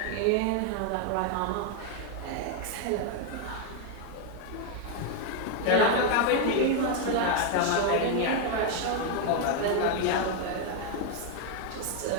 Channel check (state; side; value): different; both; correlation 0.01